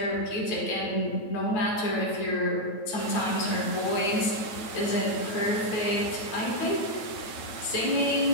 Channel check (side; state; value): right; late; 9.1 ms